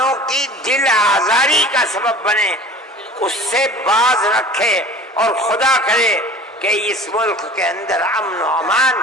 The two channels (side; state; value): both; normal; correlation 0.42